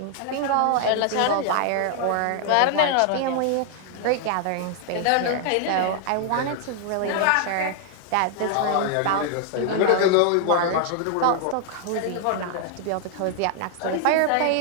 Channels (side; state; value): both; different; correlation 0.00